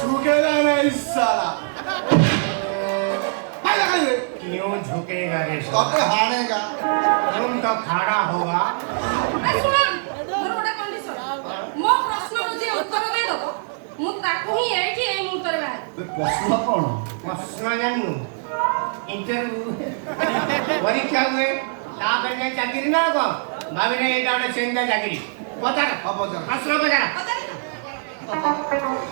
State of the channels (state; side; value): silent; left; 61 dB below the other